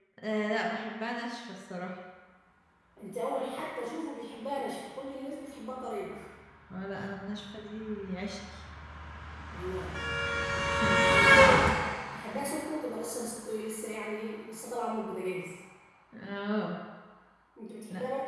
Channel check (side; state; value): both; identical; correlation 1.00